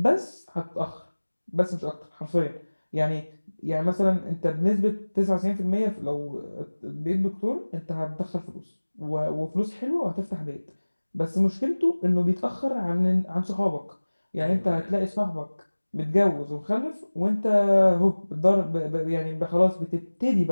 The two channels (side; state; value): both; inverted; correlation -1.00